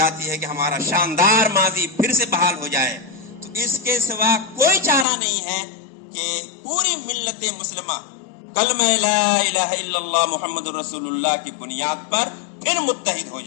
ہے کہ ہمارا شاندار ماضی پھر سے بحال ہو جائے تو اس کے سوا کوئی چارہ نہیں ہے کہ پوری ملت مسلمہ کلمہ لا الہ الا اللہ محمد رسول اللہ کی بنیاد پر پھر متحد ہو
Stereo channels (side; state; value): right; drops out; at 5.1 s